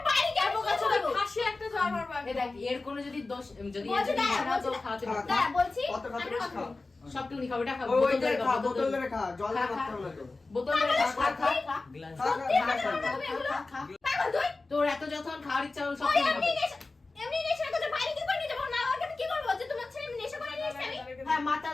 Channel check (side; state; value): right; quieter; 3.5 dB